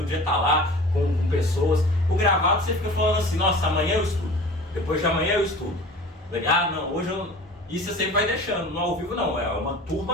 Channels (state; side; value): normal; both; correlation 0.41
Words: dia estar lá com pessoas. O gravado você fica falando assim, nossa, amanhã eu estudo, depois de amanhã eu estudo. Não, hoje eu... E você sempre vai deixando. No ao vivo não, é uma